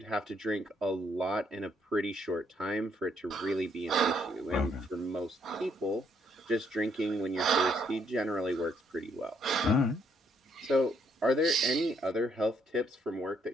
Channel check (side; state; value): both; normal; correlation 0.71